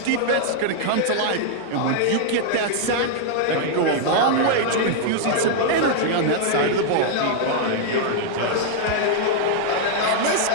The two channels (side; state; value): both; different; correlation -0.01